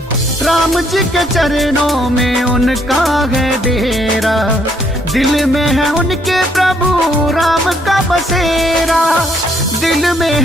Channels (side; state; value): both; normal; correlation 0.69